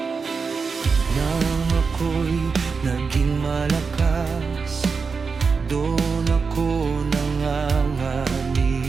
Nang ako'y naging malakas, doon ako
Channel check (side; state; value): left; quieter; 5.0 dB